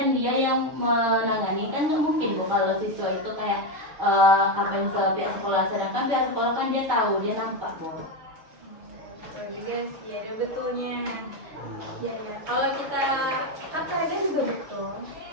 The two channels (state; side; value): late; left; 6.2 ms